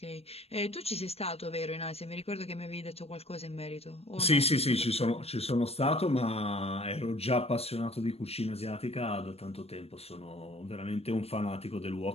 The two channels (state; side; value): late; right; 0.29 ms